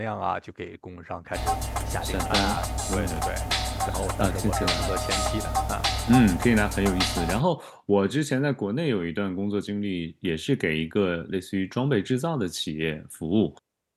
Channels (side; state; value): both; identical; correlation 1.00